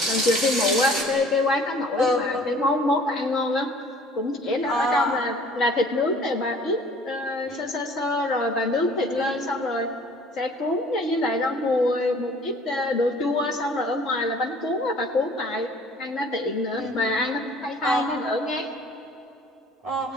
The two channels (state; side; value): normal; both; correlation 0.51